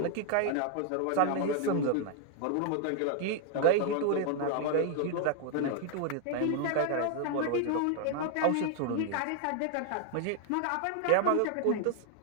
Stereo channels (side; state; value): both; different; correlation 0.00